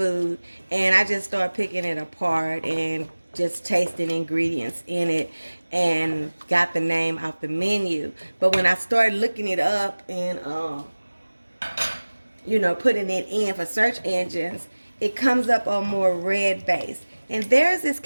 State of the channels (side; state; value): both; inverted; correlation -1.00